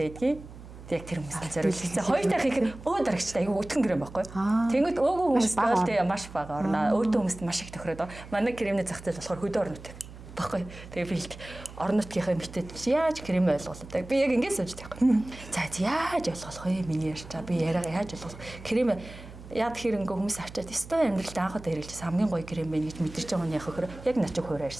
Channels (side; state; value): right; noise; hum, 16 dB below the sound